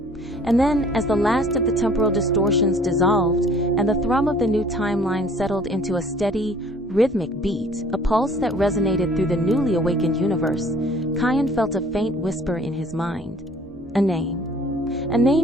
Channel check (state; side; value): normal; both; correlation 0.54